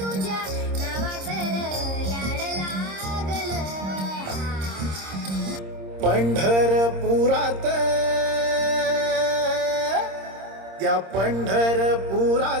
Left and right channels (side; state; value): left; late; 26 ms